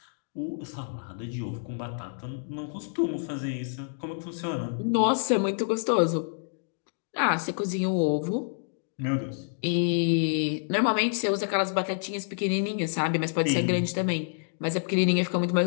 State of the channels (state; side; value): silent; right; digital silence